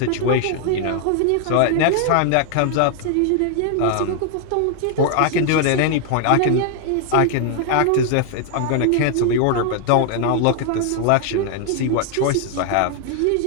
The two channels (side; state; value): both; different; correlation 0.00